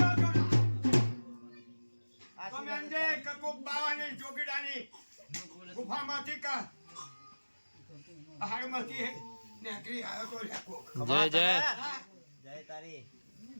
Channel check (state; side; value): inverted; both; correlation -1.00